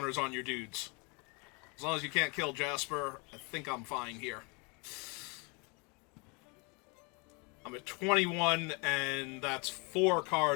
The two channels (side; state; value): right; quieter; 31.3 dB